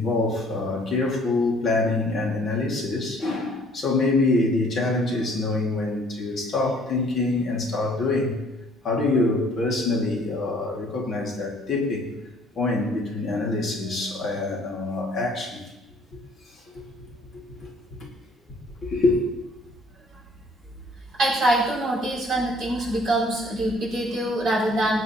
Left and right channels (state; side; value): normal; both; correlation 0.58